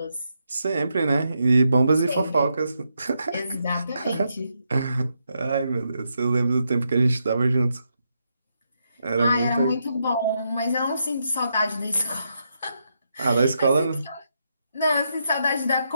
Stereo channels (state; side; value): inverted; both; correlation -0.81